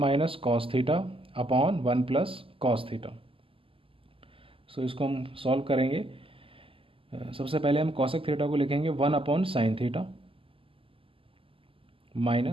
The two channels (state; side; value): late; left; 0.26 ms